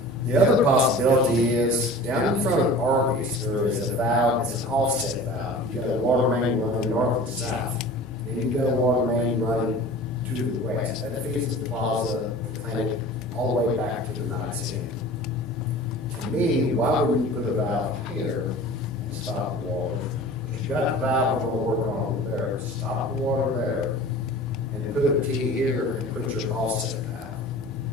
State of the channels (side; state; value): both; normal; correlation 0.40